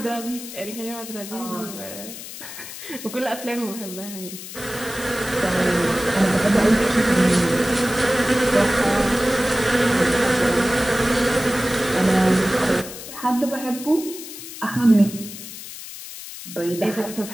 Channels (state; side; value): noise; left; hiss, 12 dB below the sound